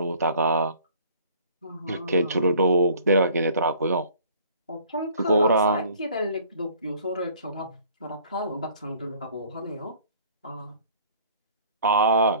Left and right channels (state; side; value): inverted; both; correlation -0.53